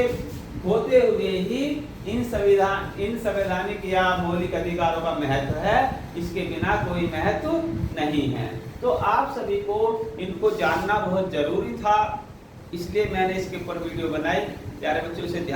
होते हुए ही इन संवैधानिक या मौलिक अधिकारों का महत्व है, इसके बिना कोई महत्व नहीं है। तो आप सभी को इनको जानना बहुत जरूरी था, इसलिए मैंने इसके ऊपर वीडियो बनाई। प्यारे बच्चों, इसे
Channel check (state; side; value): identical; both; correlation 1.00